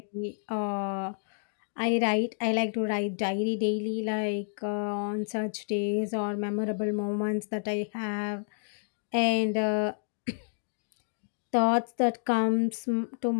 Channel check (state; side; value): silent; right; digital silence